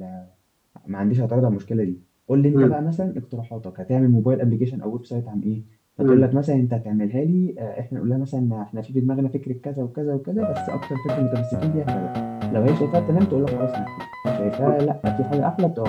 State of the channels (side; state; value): both; identical; correlation 1.00